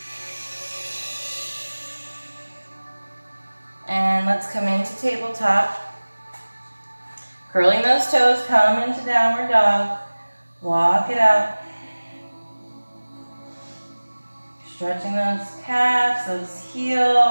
And let's come into tabletop. Curling those toes, come into downward dog. Walk it out. Stretching those calves, those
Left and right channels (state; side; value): inverted; both; correlation -1.00